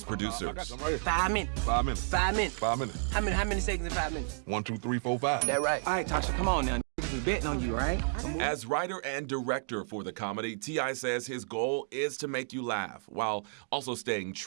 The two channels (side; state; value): left; silent; digital silence